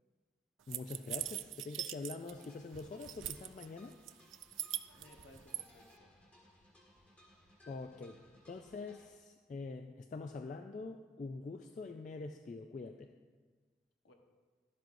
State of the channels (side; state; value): both; normal; correlation 0.48